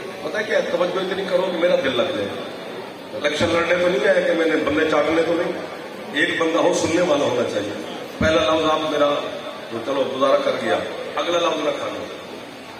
پتہ کیا توجہ اتنی کرو کہ میرا دل لگ جائے. الیکشن لڑنے تو نہیں آیا کہ میں نے بندے چاٹنے تو نہیں. ایک بندہ ہو سننے والا ہونا چاہیے. پہلا لفظ آپ میرا تو چلو گزارا کر دیا, اگلا لفظ نہ کھانا.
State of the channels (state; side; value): identical; both; correlation 1.00